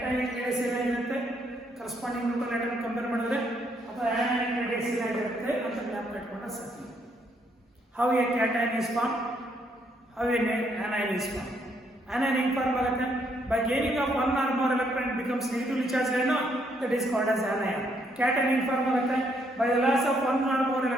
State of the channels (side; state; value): both; normal; correlation 0.72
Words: ರೇಡಿಯಸ್ ಏನಾಗಿರುತ್ತೆ ಕರೆಸ್ಪಾಂಡಿಂಗ್ ನ್ಯೂಟ್ರಲ್ ಆಟಮ್ ಕಂಪೇರ್ ಮಾಡಿದ್ರೆ, ಅಥವಾ ಸೈಜ್ ಏನಾಗಿರುತ್ತೆ ಅಂತ ಜ್ಞಾಪಕ ಇಟ್ಕೊಂಡ್ರೆ ಸಾಕು. How a cation is form, how a anion is formed. Anion ಹೆಂಗ್ ಫಾರ್ಮ್ ಆಗುತ್ತೆ? By gaining of one or more electron it becomes negatively charged ion, that is called as anion. Cation ಹೆಂಗ್ form ಆಗುತ್ತೆ? By the loss of one or more